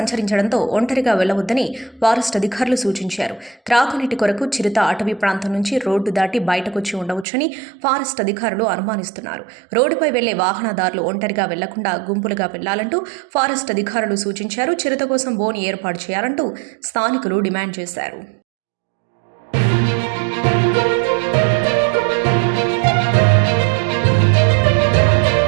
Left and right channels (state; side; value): drops out; left; at 7.2 s